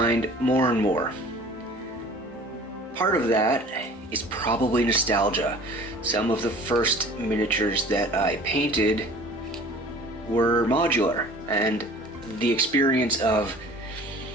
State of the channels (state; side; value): normal; both; correlation 0.46